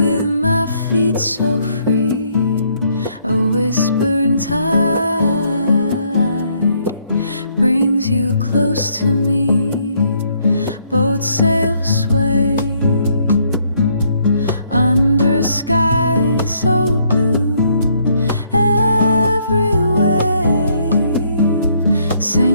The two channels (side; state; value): both; inverted; correlation -0.69